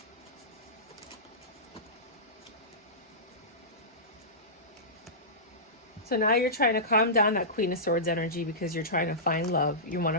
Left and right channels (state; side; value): normal; both; correlation -0.19